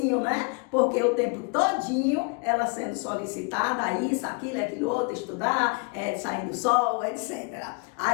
né? Porque o tempo todinho ela sendo solicitada, isso, aquilo outro, estudar, sair do sol, etc.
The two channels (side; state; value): right; quieter; 31.9 dB